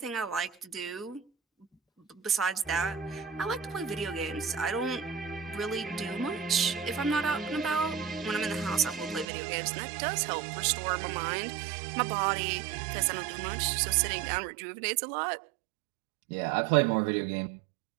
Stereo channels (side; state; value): left; drops out; at 9.2 s